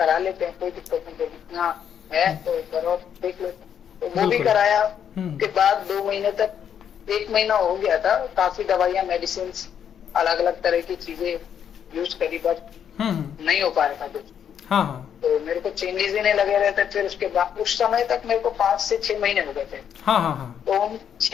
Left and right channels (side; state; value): right; quieter; 8.6 dB